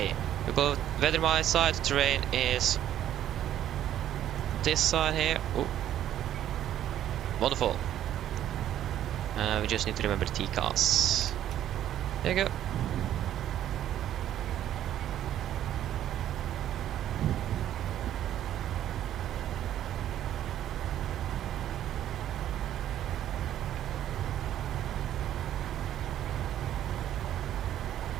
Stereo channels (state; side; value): quieter; left; 11.5 dB